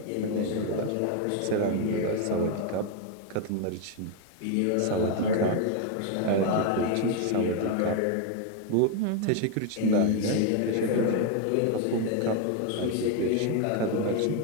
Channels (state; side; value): different; both; correlation 0.01